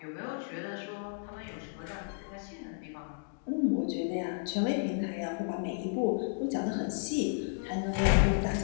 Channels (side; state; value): right; silent; digital silence